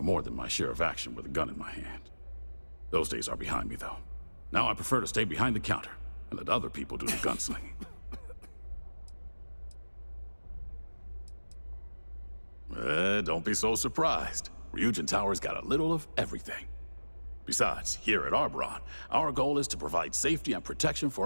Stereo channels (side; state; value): both; inverted; correlation -1.00